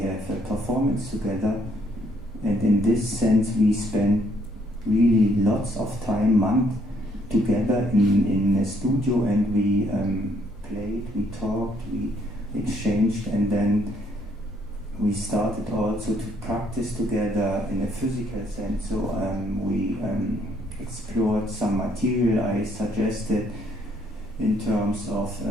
have a performance together. And in this sense we spent really lots of time, months together in a studio, and we played, we talked, we exchanged, and then we started also to practice together in a physical sense. So we explored some material I suggested in terms of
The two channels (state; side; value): normal; both; correlation 0.68